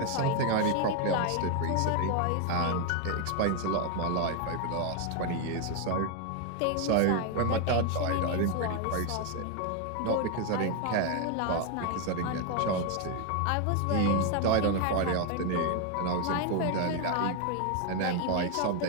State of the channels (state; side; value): different; both; correlation 0.01